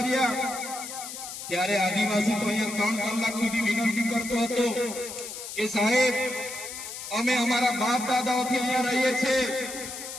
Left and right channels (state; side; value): noise; left; hiss, 9 dB below the sound